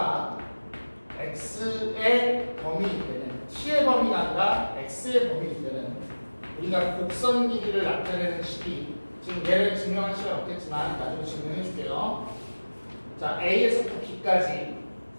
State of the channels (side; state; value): both; inverted; correlation -1.00